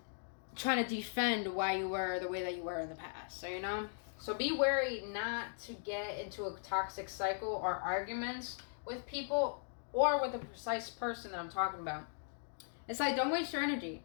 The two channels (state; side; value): silent; right; digital silence